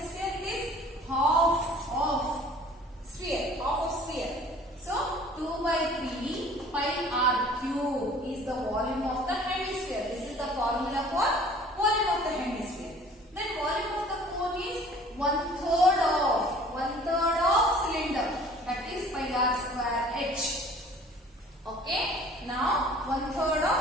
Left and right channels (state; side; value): normal; both; correlation 0.50